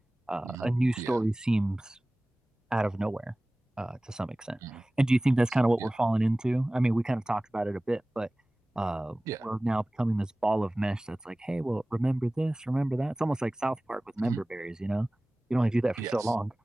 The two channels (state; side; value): normal; both; correlation 0.98